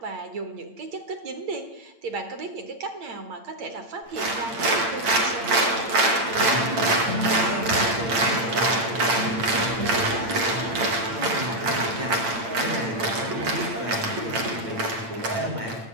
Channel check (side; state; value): left; late; 8.8 ms